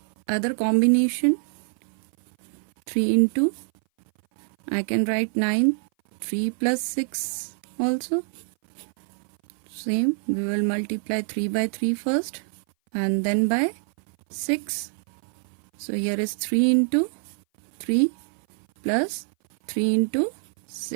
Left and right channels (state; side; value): silent; left; 58 dB below the other